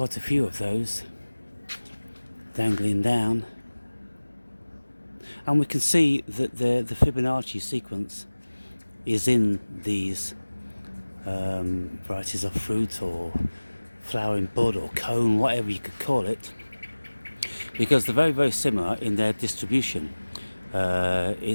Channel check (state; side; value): inverted; both; correlation -1.00